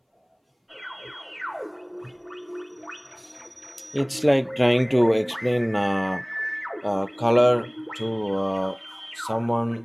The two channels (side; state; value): both; identical; correlation 1.00